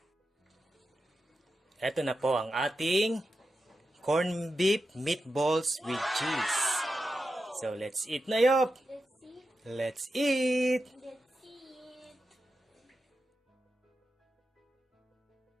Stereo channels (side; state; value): both; normal; correlation 0.90